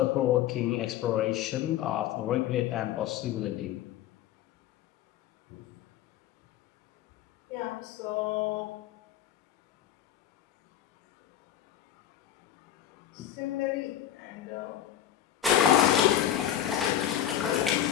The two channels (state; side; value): quieter; right; 11.3 dB